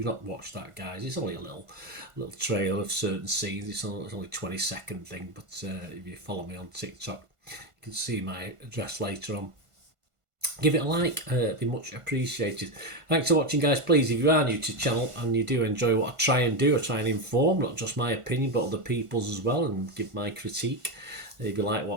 not watched that, guys, it's only a little trailer of certain scenes. It's only a 20-second thing, but if you follow me on TikTok, you can see my address later on. Give it a like, it'd be much appreciated. Thanks for watching, guys. Please, if you are new to the channel and you do enjoy what I try and do, I try and inform, not just my opinion, but other people's as well, and give my critique. If you like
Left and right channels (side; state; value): left; late; 1.5 ms